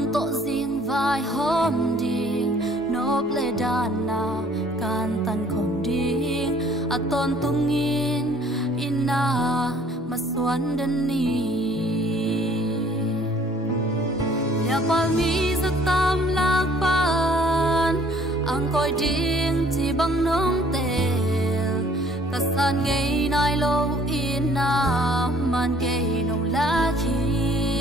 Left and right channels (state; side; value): normal; both; correlation 0.57